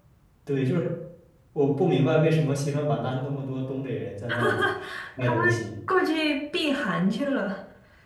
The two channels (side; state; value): both; identical; correlation 1.00